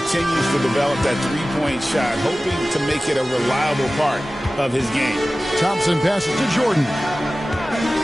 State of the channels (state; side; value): normal; both; correlation 0.96